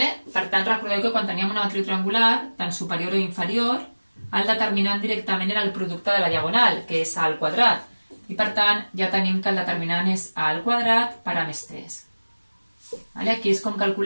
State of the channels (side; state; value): both; inverted; correlation -1.00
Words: tant, recordeu que quan teníem una matriu triangular, tant superior o inferior, el determinant directament era el producte de la diagonal, que és A al quadrat. I per tant, ja tenim que el determinant és A al quadrat per A més 3. Aquí és com